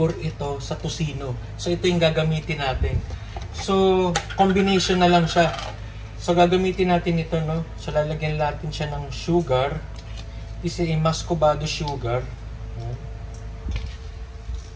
ito sa tocino. So ito yung gagamitin natin. So combination na lang siya. So gagamitin natin ito no. So lalagyan natin siya ng sugar. This is a muscovado sugar.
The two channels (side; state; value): both; identical; correlation 1.00